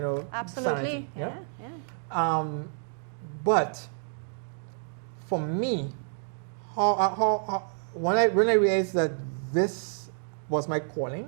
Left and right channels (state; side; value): silent; left; digital silence